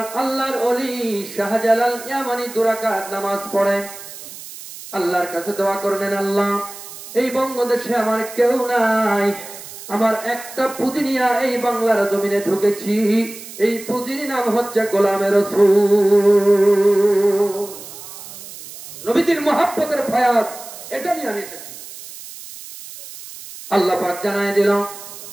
আল্লাহর ওলি শাহজালাল ইয়ামানি 2 রাকাত নামাজ পড়েন, আল্লাহর কাছে দোয়া করলেন, আল্লাহ এই বঙ্গদেশে আমার কেউ নাই, আমার একটা পুঁজি নিয়ে এই বাংলার জমিনে ঢুকেছি। এই পুঁজির নাম হচ্ছে গোলামে রাসূল। নবীজির মহব্বতের ফায়াজ, এটা নিয়ে আমি এসেছি। আল্লাহ পাক জানায় দিল,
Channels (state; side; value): noise; right; hiss, 14 dB below the sound